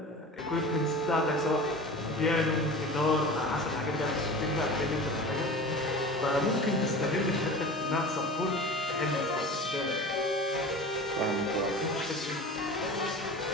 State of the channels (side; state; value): both; normal; correlation 0.36